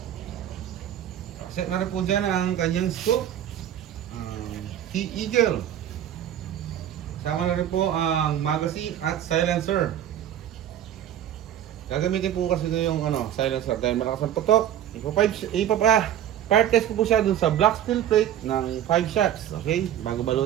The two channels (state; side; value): quieter; left; 10.8 dB